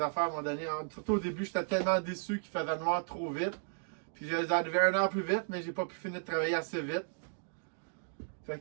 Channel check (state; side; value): silent; left; digital silence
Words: à un moment donné. Surtout au début, j'étais tellement déçu qu'il faisait noir trop vite. Puis je les arrivé 1 heure plus vite, mais j'ai pas pu finir de travailler assez vite. Fait